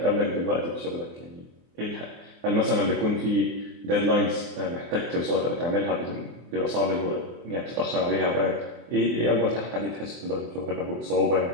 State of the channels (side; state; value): left; late; 24 ms